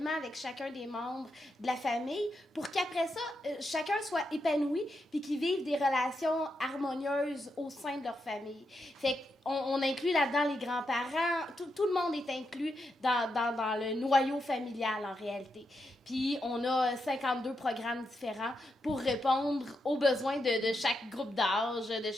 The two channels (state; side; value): normal; both; correlation 0.84